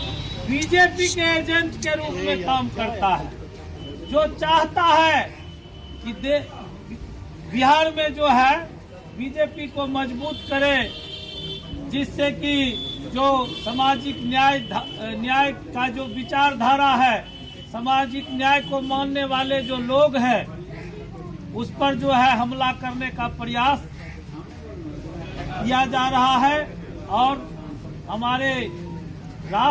बीजेपी के एजेंट के रूप में काम करता है, जो चाहता है कि बिहार में जो है बीजेपी को मजबूत करे, जिससे कि जो सामाजिक न्याय का जो विचारधारा है, सामाजिक न्याय को मानने वाले जो लोग हैं, उस पर जो है हमला करने का प्रयास किया जा रहा है। और हमारे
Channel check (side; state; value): both; identical; correlation 1.00